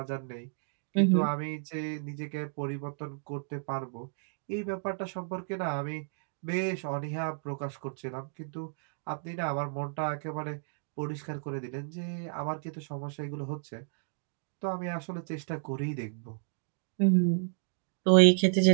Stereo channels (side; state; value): left; silent; digital silence